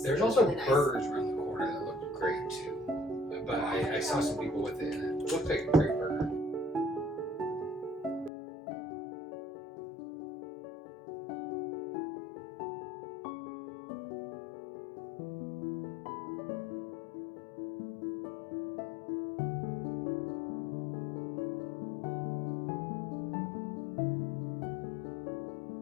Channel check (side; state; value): right; drops out; at 8.3 s